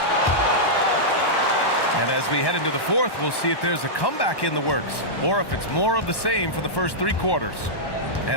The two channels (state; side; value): late; right; 1.1 ms